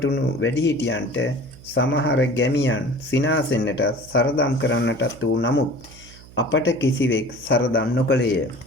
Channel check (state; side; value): noise; right; hum, 21 dB below the sound